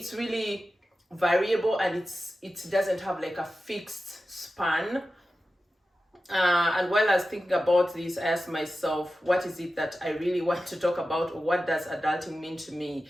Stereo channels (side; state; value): both; normal; correlation 0.93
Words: really variable, and it doesn't have like a fixed span. And while I was thinking about this, I asked myself, what is it that I really want to talk about, or what does adulting mean to me?